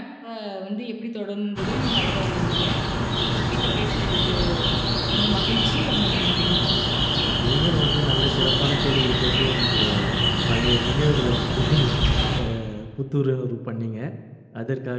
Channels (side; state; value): both; identical; correlation 1.00